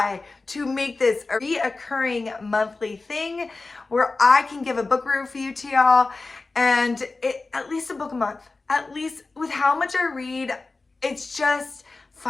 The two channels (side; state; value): right; quieter; 3.6 dB